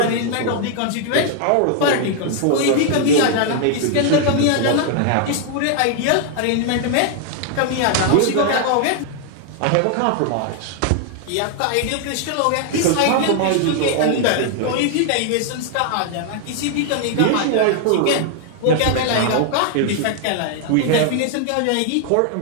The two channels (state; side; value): different; both; correlation 0.00